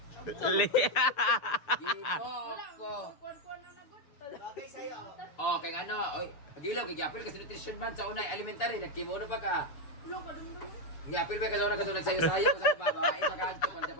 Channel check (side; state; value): right; late; 6.7 ms